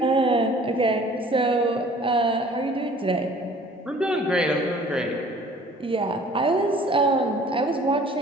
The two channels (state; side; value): normal; both; correlation 0.51